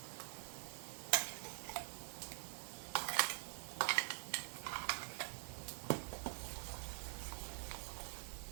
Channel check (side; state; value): left; silent; digital silence